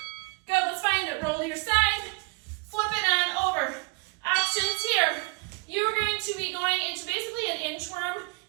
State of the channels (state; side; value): quieter; left; 30.3 dB